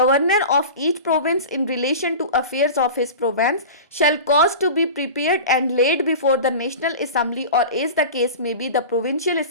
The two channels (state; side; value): inverted; both; correlation -0.33